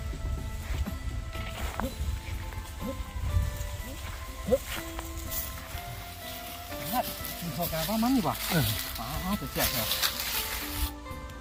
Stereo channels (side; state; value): both; identical; correlation 1.00